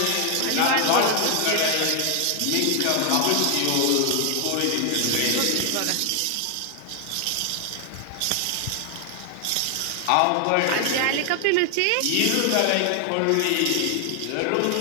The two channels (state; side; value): different; both; correlation 0.00